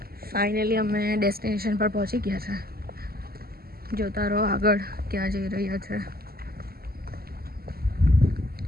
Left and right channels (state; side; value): late; left; 0.45 ms